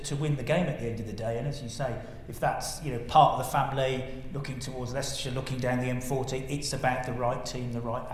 win the game at the end of the day. And as you say, if that's, part of the family, looking towards Leicestershire, looking down the M40, it's about the right team, the right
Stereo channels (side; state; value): both; identical; correlation 1.00